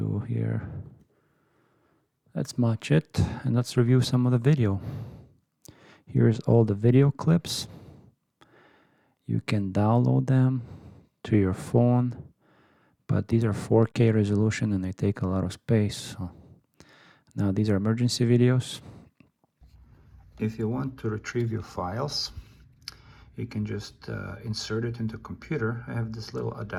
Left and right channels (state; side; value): identical; both; correlation 1.00